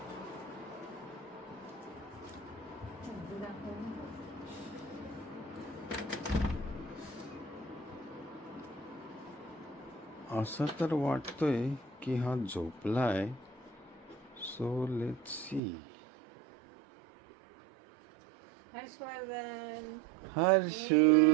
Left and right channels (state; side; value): drops out; left; at 15.6 s